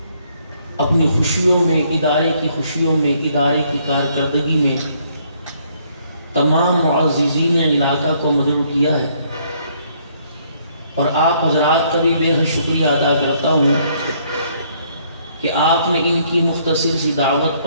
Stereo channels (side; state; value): both; inverted; correlation -0.67